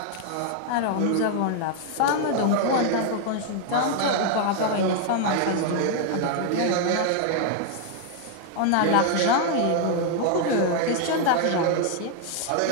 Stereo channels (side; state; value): both; different; correlation 0.00